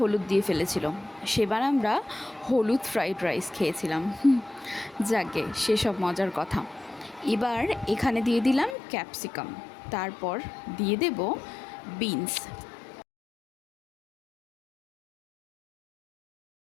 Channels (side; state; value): right; drops out; at 8.8 s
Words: দিয়ে ফেলেছিল, সেবার আমরা হলুদ ফ্রাইড রাইস খেয়েছিলাম। যাকে সেসব মজার কথা। এবার এখানে দিয়ে দিলাম ক্যাপসিকাম, তারপর দিয়ে দেব বিনস।